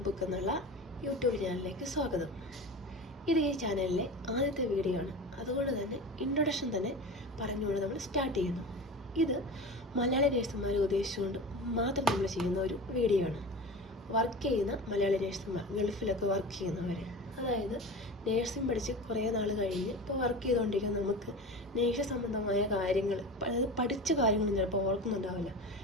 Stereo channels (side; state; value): both; normal; correlation 0.31